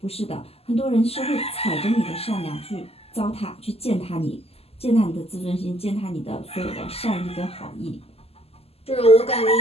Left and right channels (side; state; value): right; late; 0.29 ms